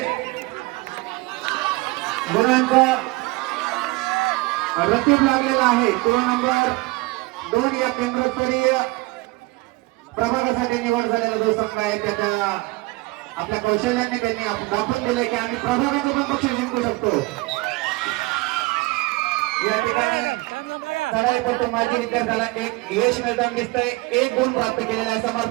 गुणांचा रतीब लागलेला आहे. तो नंबर 2 या केंद्रस्तरीय प्रभागासाठी निवड झालेला जो संघ आहे त्याच्या आपल्या कौशल्याने त्यांनी दाखवून दिले की आम्ही प्रभागाचं पण बक्षीस जिंकू शकतो. या ठिकाणी चढाईपटू माजी विद्यार्थ्याला एक यश मिळताना दिसतंय. 1 गुण प्राप्त केलेला आहे.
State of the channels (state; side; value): quieter; left; 23.0 dB